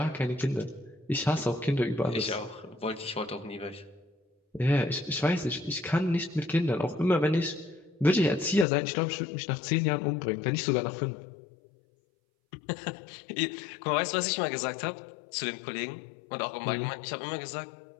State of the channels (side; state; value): right; drops out; at 8.7 s